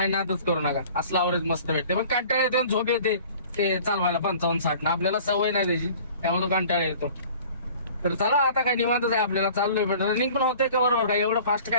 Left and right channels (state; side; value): inverted; both; correlation -0.47